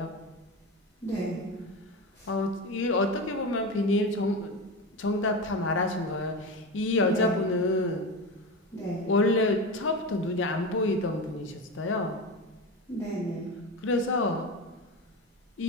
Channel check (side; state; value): both; normal; correlation 0.22